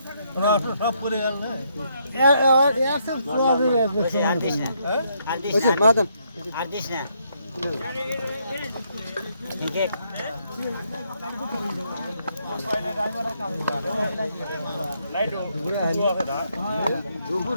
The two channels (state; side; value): inverted; both; correlation -0.74